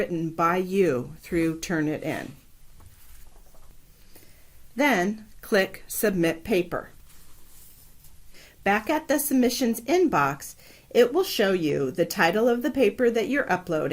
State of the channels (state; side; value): identical; both; correlation 1.00